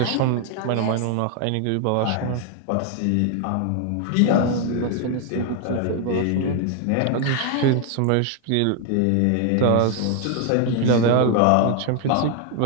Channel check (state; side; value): different; both; correlation 0.00